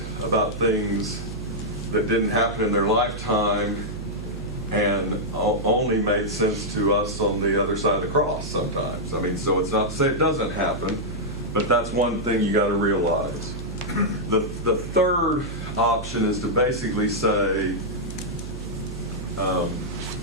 about things that didn't happen in their lifetime and only made sense to us on the other side of the cross sometimes. I mean, so it's not to say it doesn't happen, but that's one thing you got to realize. The third option is to basically say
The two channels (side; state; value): right; noise; hum, 9 dB below the sound